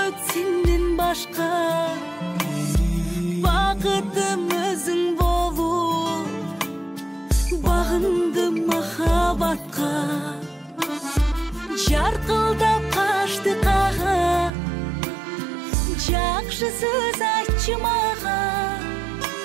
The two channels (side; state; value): left; drops out; at 14.5 s